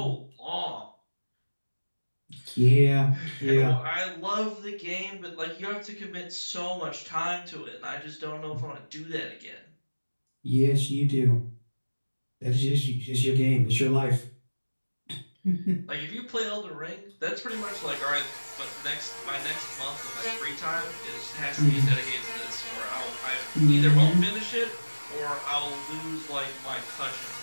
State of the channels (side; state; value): both; inverted; correlation -1.00